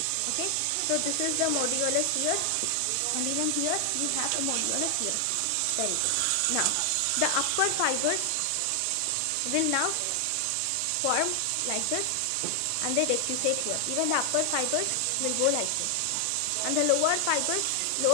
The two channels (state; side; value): different; both; correlation 0.00